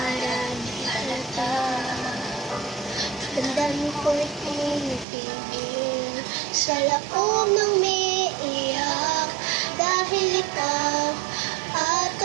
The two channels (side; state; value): left; drops out; at 5.1 s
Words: di halata. Tandaan ko'y tinitigil sa loob ng may iyak dahil ikaw